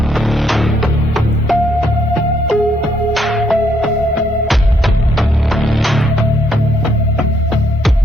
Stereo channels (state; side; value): normal; both; correlation 0.71